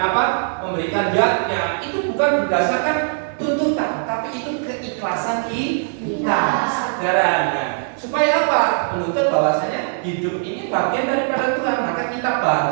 apa? Memberikan yatnya. Itu bukan berdasarkan tuntutan, tapi itu keikhlasan ajaran. Nah, supaya apa? Menuntut bahwasanya hidup ini bagian daripada Tuhan, maka kita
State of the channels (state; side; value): silent; left; digital silence